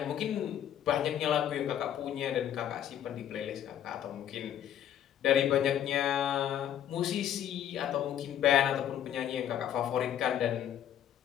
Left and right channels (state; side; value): quieter; right; 10.4 dB